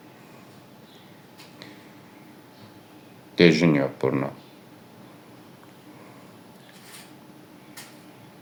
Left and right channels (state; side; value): identical; both; correlation 1.00